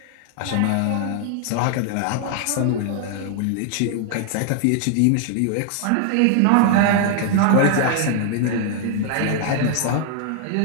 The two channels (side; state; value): both; different; correlation 0.00